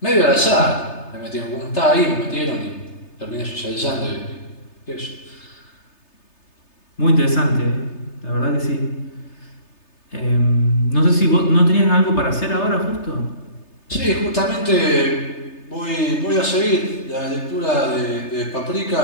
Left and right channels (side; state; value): right; late; 3.3 ms